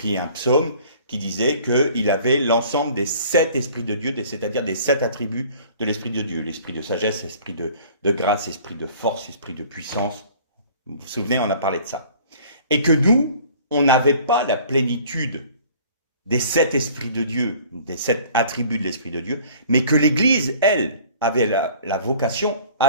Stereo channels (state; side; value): inverted; both; correlation -0.50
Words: un psaume qui disait qu'il avait l'ensemble des 7 esprits de Dieu, c'est-à-dire des 7 attributs de l'Esprit de Dieu. L'esprit de sagesse, esprit de grâce, esprit de force, esprit de puissance. Vous vous souvenez, on a parlé de ça. Et que nous, on n'avait pas la plénitude des 7 esprits de Dieu, des 7 attributs de l'Esprit de Dieu, mais que l'Église, elle, avait la vocation